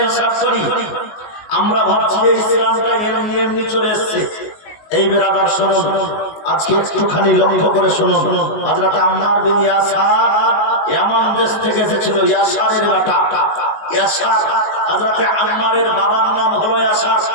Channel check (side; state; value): right; late; 19 ms